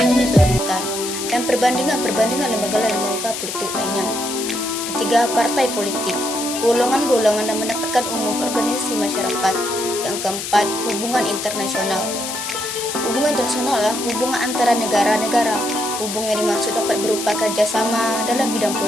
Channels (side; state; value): left; noise; hiss, 5 dB below the sound